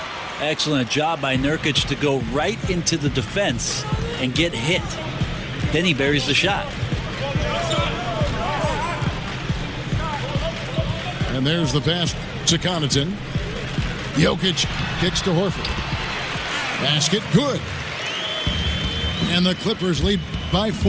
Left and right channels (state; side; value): identical; both; correlation 1.00